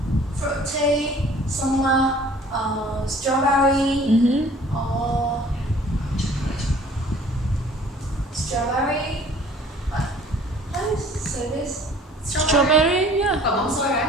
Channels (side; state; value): both; normal; correlation 0.52